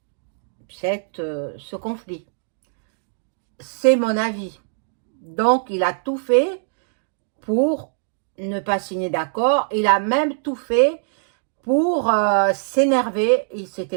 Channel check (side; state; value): left; silent; digital silence